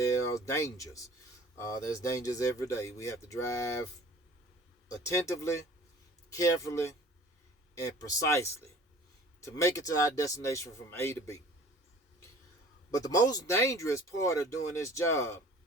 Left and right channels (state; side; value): normal; both; correlation 0.47